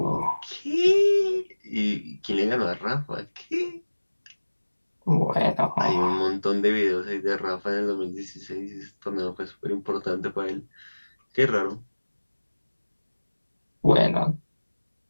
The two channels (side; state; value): both; inverted; correlation -1.00